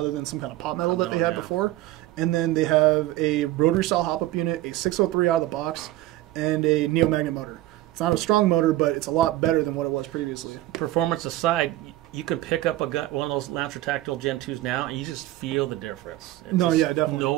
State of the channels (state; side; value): quieter; left; 16.0 dB